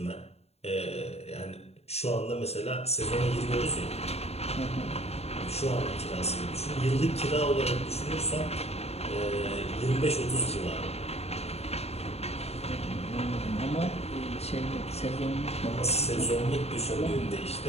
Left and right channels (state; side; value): late; right; 0.30 ms